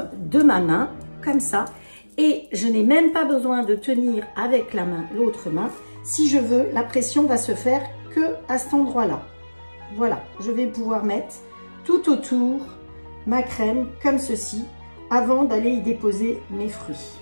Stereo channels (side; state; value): both; inverted; correlation -1.00